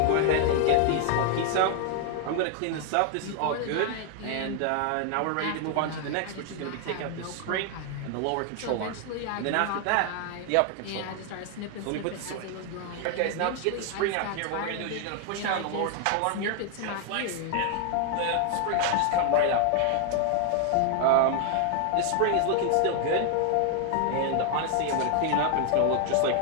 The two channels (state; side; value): different; both; correlation 0.00